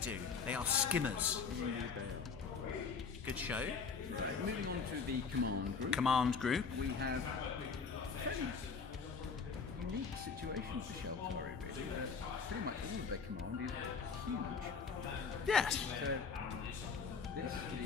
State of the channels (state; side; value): quieter; right; 5.4 dB